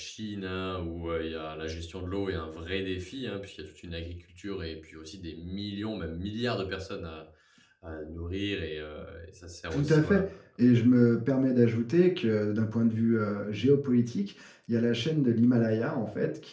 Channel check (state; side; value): identical; both; correlation 1.00